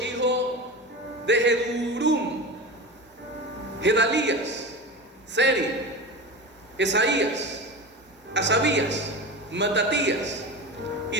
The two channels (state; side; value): normal; both; correlation 0.27